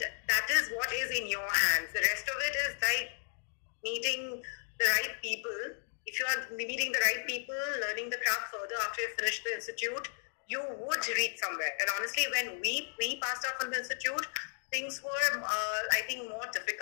that is what is in your hands. The rest of it is like meeting the right people. If you are meeting the right people, learning the craft further after you finish the institute, you would reach somewhere. And honestly, when we passed out from the institute, things were, I think, more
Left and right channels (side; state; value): right; silent; digital silence